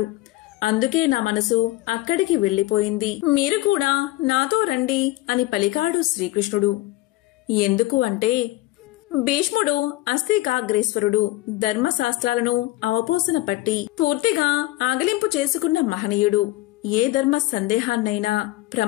అందుకే నా మనసు అక్కడికి వెళ్లిపోయింది. మీరు కూడా నాతో రండి అని పలికాడు శ్రీకృష్ణుడు. ఎందుకు అంటే, భీష్ముడు అస్థికాగ్రేశ్వరుడు, ధర్మశాస్త్రాలను అవపోసన పట్టి పూర్తిగా ఆగలింపు చేసుకున్న మహనీయుడు. ఏ ధర్మ సందేహాన్నైనా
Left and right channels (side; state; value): right; quieter; 18.1 dB